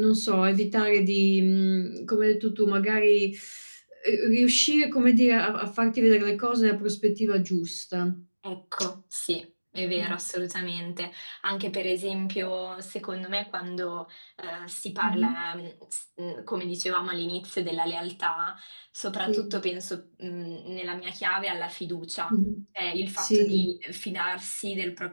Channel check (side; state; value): both; inverted; correlation -1.00